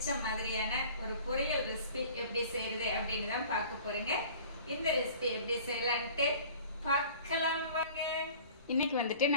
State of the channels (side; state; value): both; inverted; correlation -0.46